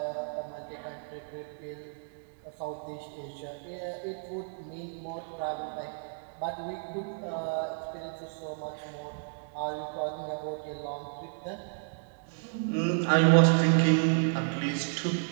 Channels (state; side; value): silent; left; digital silence